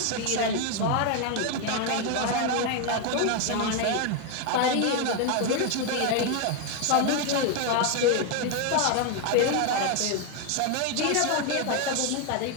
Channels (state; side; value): different; both; correlation 0.01